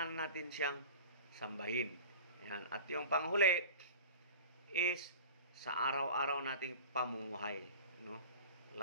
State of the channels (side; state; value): both; inverted; correlation -0.38